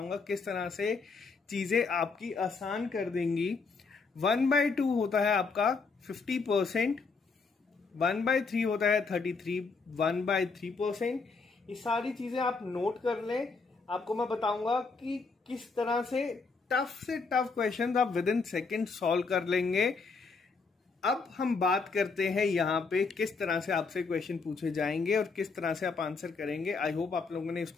किस तरह से चीजें आपकी आसान कर देंगी। 1/2 होता है आपका 50%, 1/3 होता है 33, 1/3%। ये सारी चीजें आप नोट कर लें। आपको मैं बताऊंगा कि किस तरह से टफ क्वेश्चन आप विद इन सेकेंड सॉल्व कर लेंगे। अब हम बात करते हैं यहाँ पे किस तरह से आपसे क्वेश्चन पूछे जाएंगे और किस तरह से आप आंसर करेंगे। आई होप आप लोगों ने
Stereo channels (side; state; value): right; quieter; 4.5 dB